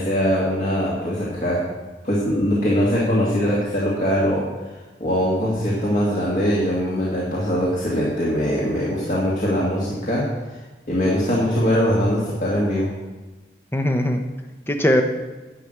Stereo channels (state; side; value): normal; both; correlation 0.64